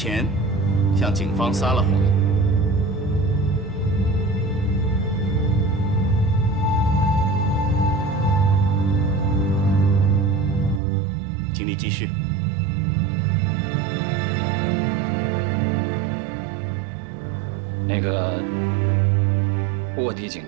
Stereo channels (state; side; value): drops out; left; at 10.8 s